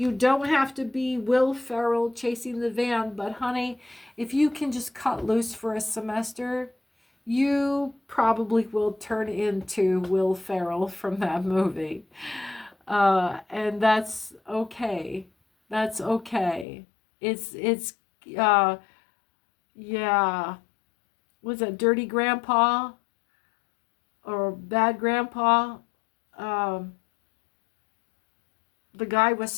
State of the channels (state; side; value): drops out; right; at 16.7 s